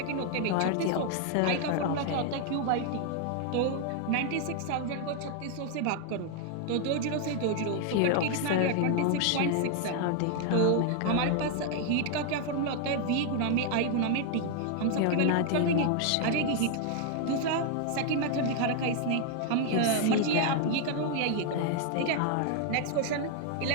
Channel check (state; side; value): different; both; correlation 0.00